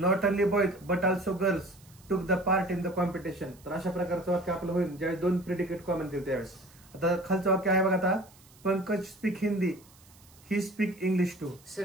only boys but also girls took the part in the competition. तर अशा प्रकारचं वाक्य आपलं होईल ज्यावेळेस दोन प्रेडिकेट कॉमन दिले त्यावेळेस. आता खालचं वाक्य आहे बघा, आता Pankaj speak Hindi he speak English too.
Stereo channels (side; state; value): right; noise; hiss, 26 dB below the sound